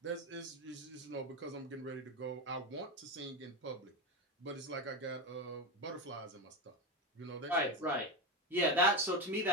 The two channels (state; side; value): normal; both; correlation 0.16